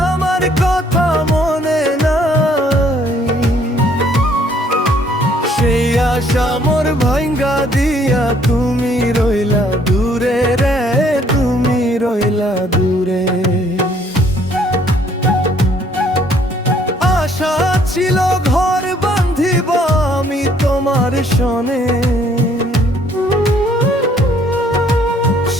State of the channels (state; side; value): normal; both; correlation 0.63